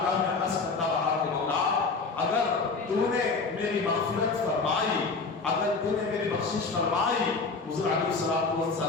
میں عرض کرتا رہا کہ مولا اگر تو نے میری مغفرت فرمائی، اگر تو نے میری بخشش فرمائی، حضور علیہ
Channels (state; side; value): quieter; right; 4.2 dB